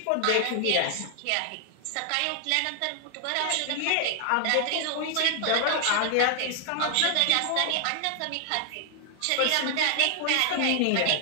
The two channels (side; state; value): both; different; correlation 0.00